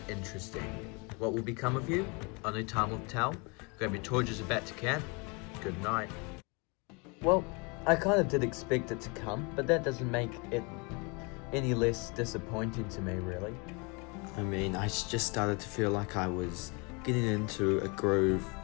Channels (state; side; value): quieter; right; 30.6 dB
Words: interesting. What will become of you? Only time will tell. Grab your torches about to camp. Good night. Well, I kind of did expect it to come, but that doesn't make it any less disappointing to me, really. I mean, I just started to feel like I was getting into a groove,